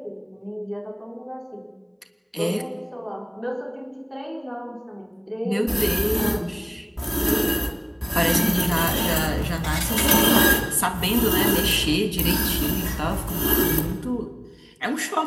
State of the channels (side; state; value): both; identical; correlation 1.00